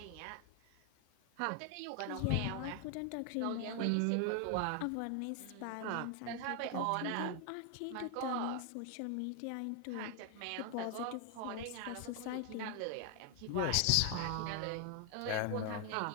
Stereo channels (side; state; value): both; different; correlation 0.00